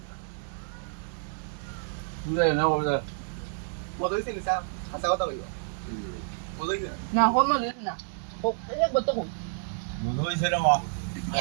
তুই না ওরা মদ হইছে নিসা হাসা কথা কইবা মদ হইছে না হল না না ও এক বত কো মনে হইছে রে মা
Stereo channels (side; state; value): left; silent; digital silence